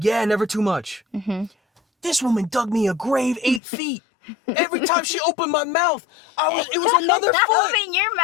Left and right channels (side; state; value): right; drops out; at 3.6 s